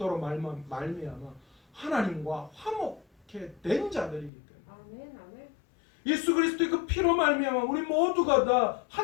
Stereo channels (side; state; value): right; drops out; at 4.3 s